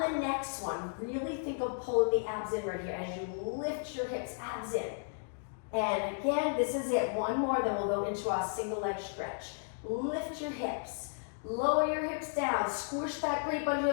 the next one, really think of pulling the abs in right here as you lift your hips, abs in. And again, this is it. 1 more, then we'll go into our single leg stretch. Lift your hips. Lower your hips down, squish that grate under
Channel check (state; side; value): silent; right; digital silence